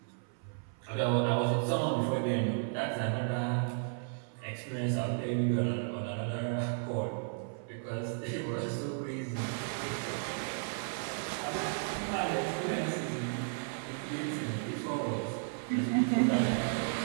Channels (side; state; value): left; silent; 55 dB below the other